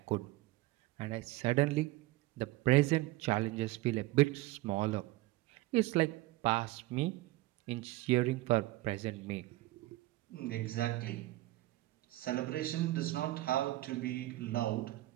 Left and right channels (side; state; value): left; quieter; 18.2 dB